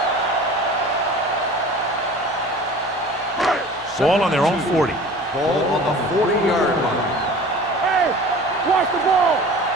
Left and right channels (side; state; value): both; normal; correlation 0.42